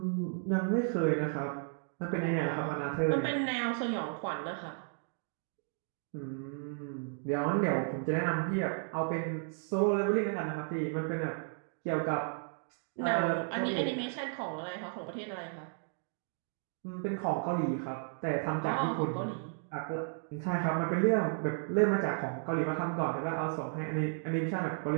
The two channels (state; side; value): silent; left; 55 dB below the other